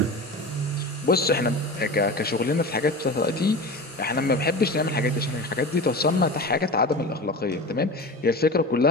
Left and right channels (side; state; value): both; normal; correlation 0.30